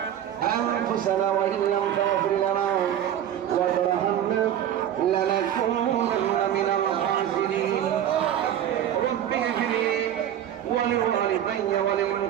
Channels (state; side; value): quieter; left; 10.6 dB